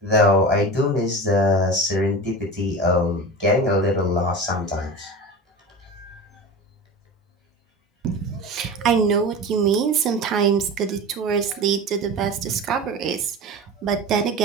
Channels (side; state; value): both; normal; correlation 0.30